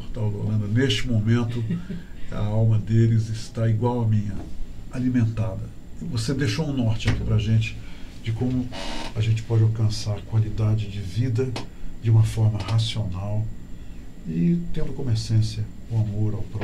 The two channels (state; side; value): identical; both; correlation 1.00